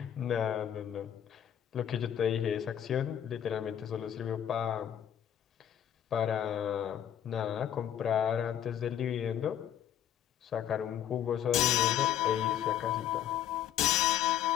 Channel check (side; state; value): right; quieter; 10.1 dB